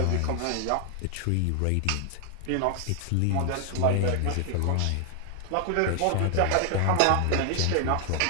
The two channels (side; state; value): both; different; correlation 0.00